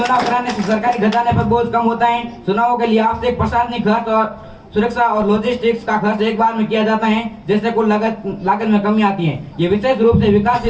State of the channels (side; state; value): both; identical; correlation 1.00